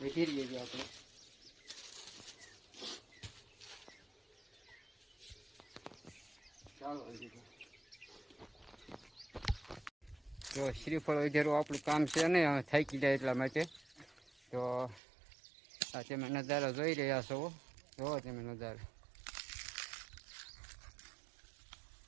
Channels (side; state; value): left; drops out; at 15.0 s